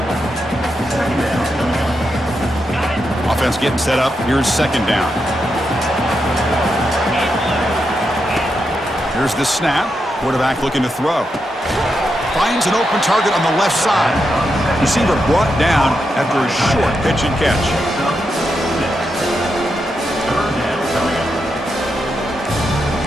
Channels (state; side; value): normal; both; correlation 0.85